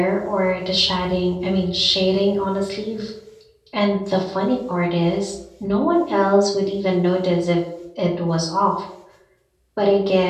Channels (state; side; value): identical; both; correlation 1.00